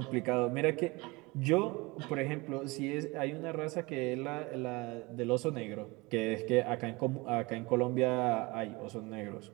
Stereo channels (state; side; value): quieter; left; 24.4 dB